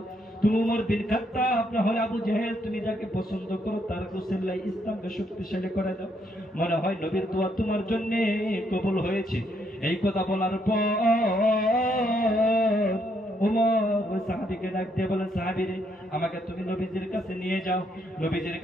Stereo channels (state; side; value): normal; both; correlation 0.74